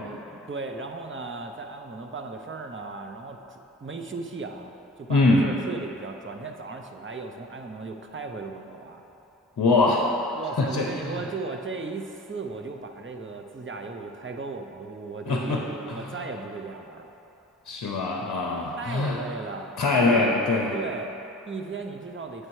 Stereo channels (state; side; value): normal; both; correlation 0.40